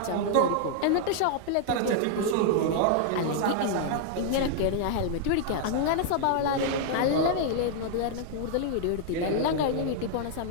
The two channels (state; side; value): different; both; correlation -0.01